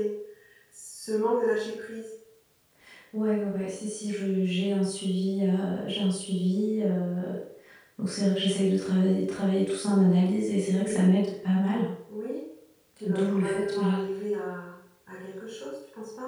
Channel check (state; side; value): identical; both; correlation 1.00